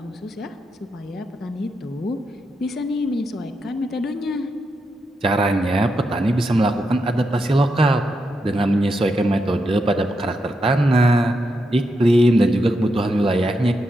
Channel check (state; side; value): normal; both; correlation 0.84